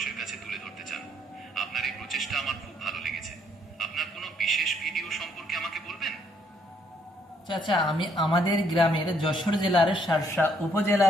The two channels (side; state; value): both; normal; correlation 0.69